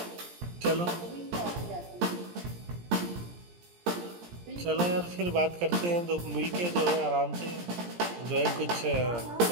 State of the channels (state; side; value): late; left; 17 ms